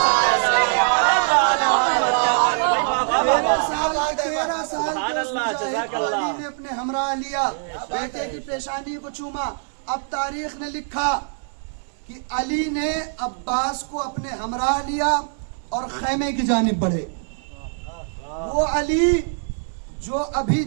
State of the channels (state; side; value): silent; left; 58 dB below the other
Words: अली ने अपने हमरा लिया, बेटे की पेशानी को चूमा। अब तारीख ने लिखा कि अली ने अब्बास को अपने हमरा लिया और खैमे की जानिब बढ़े। वो अली जो अभी